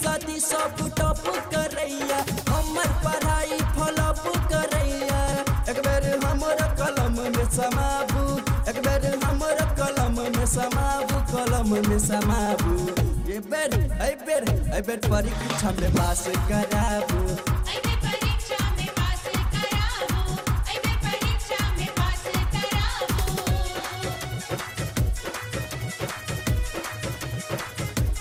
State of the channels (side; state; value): both; identical; correlation 1.00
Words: साथी सब टप करैया हमर पढ़ाई फॉलोअप करैया एक बेर हमर कलम में समाबू एक बेर हमर कलम में समाबू कलम में समाबू ये बेर परीक्षा में पास कराबू